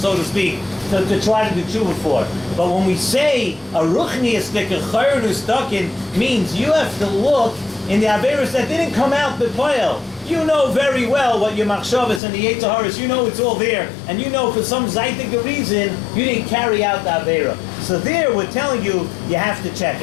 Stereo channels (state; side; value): drops out; right; at 12.2 s